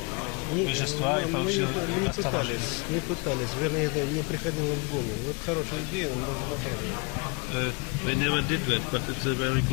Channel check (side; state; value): right; quieter; 31.6 dB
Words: вещества и получил оставление. Не пытались, вернее, это не приходило в голову. Вот хорошая идея, но можно попробовать. They never did that, but it's a very